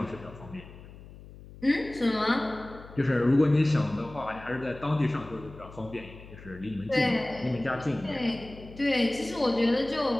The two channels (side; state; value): left; noise; hum, 18 dB below the sound